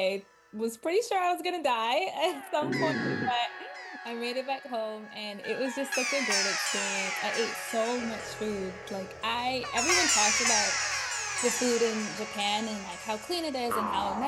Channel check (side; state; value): both; identical; correlation 1.00